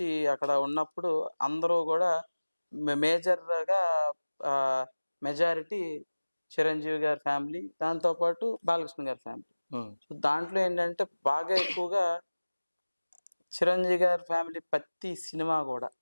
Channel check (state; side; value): inverted; both; correlation -1.00